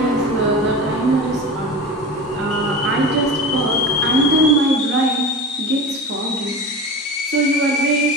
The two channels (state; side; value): normal; both; correlation 0.30